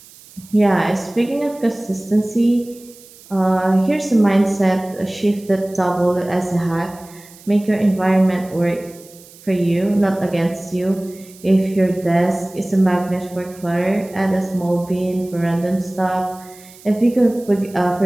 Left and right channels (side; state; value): right; noise; hiss, 23 dB below the sound